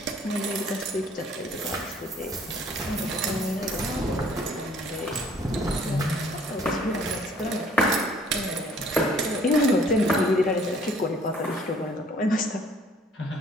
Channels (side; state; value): both; normal; correlation 0.58